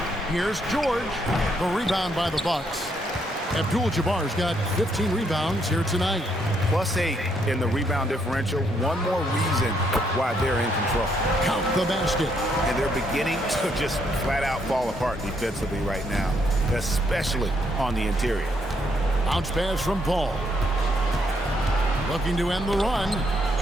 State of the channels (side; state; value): both; normal; correlation 0.73